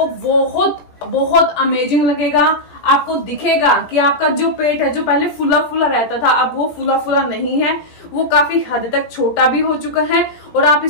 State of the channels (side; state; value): right; late; 17 ms